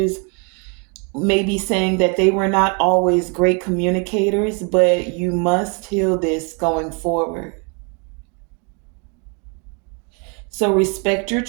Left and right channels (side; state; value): left; quieter; 35.4 dB